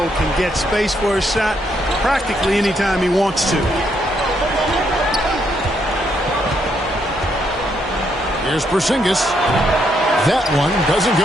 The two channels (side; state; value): both; normal; correlation 0.75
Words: can get space for his shot practically anytime he wants to. Here's Porzingis. That one doesn't